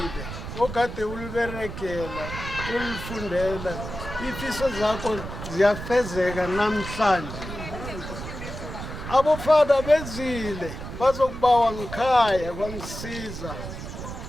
okade uliberekela ulifundela ifiso zakho ziyafezeka namhlanje abofada bezile bazokubawa ngikhaya kwaMsiza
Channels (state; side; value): noise; right; rumble, 9 dB below the sound